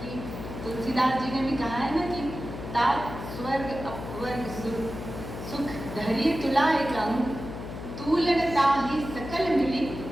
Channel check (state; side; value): noise; left; hum, 9 dB below the sound